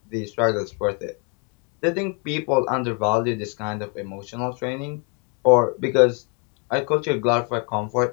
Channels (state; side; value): quieter; right; 35.8 dB